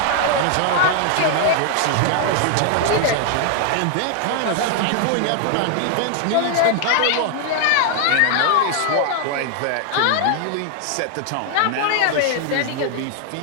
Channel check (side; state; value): both; different; correlation 0.00